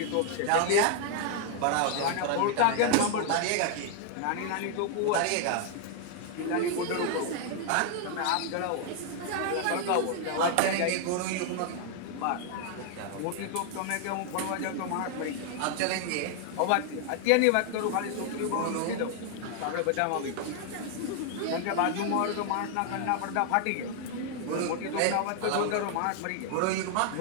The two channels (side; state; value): both; different; correlation 0.00